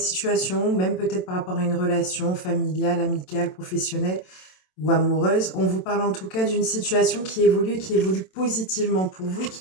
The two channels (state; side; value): late; right; 27 ms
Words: même peut-être par rapport à une relation familiale, amicale, professionnelle ou amoureuse. On vous parle en tout cas d'une situation qui évolue positivement pour vous et